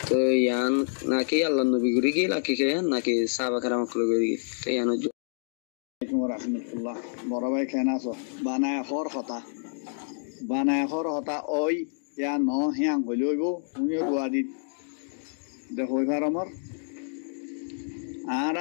To yan naki Allah nabi guri ki laki kian naki sahaba karam kulu guri ki. To yan ojo. Assalamualaikum warahmatullah. বড় ভাই কেন আছো? বানায় হর হতা ওই ইয়া ন হিয়াং হইলইব তুমিও দুয়াদি দেখো এবার আমার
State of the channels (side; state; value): right; silent; digital silence